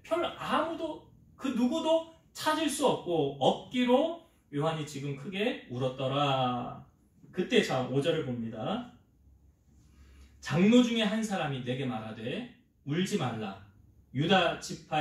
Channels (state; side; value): identical; both; correlation 1.00